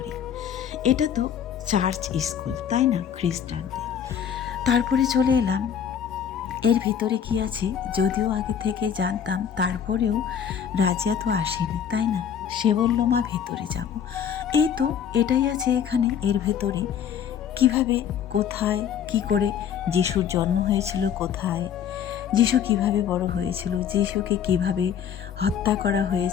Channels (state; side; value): quieter; right; 8.5 dB